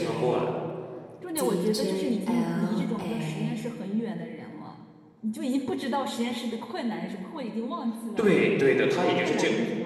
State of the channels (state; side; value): identical; both; correlation 1.00